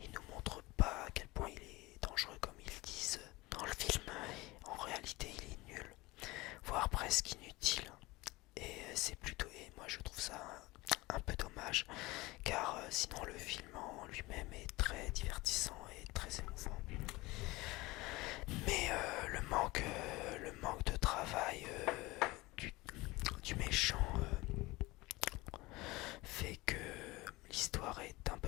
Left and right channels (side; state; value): right; quieter; 21.3 dB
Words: nous montre pas à quel point il est dangereux comme ils disent dans le film. En réalité, il est nul, voire presque inutile. Et moi je trouve ça un peu dommage, car sinon le film en lui-même est très divertissant et très émouvant. Mais le manque de travail du méchant fait que l'histoire est un